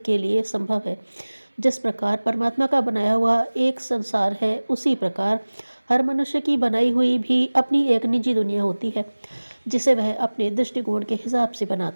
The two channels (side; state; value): both; inverted; correlation -1.00